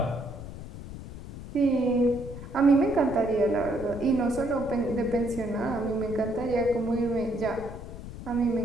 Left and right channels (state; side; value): noise; left; rumble, 11 dB below the sound